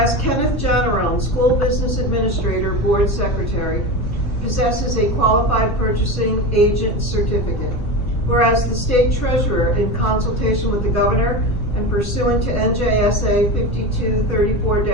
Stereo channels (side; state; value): right; late; 2.7 ms